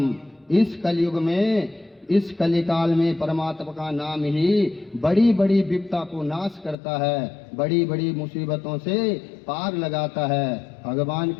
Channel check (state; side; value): drops out; right; at 6.8 s